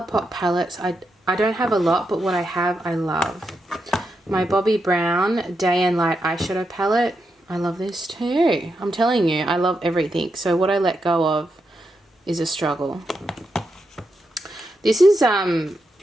palettes, I don't have a lot, but what I have, I love. My Bobbi Brown Day and Light eyeshadow palette. I love this too. I'm telling you, I love everything. So what I let go of is a struggle. This is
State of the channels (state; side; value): normal; both; correlation 0.84